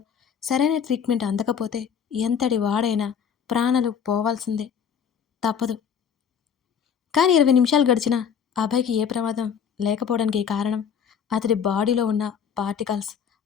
సరైన ట్రీట్మెంట్ అందకపోతే ఎంతటి వాడైనా ప్రాణాలు పోవాల్సిందే. తప్పదు. కానీ 20 నిమిషాలు గడిచినా అభయ్‌కి ఏ ప్రమాదం లేకపోవడానికి కారణం అతడి బాడీలో ఉన్న పార్టికల్స్,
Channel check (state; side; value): quieter; right; 7.5 dB